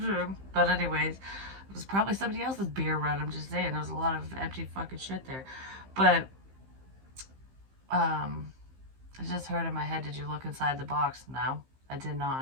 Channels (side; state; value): left; late; 15 ms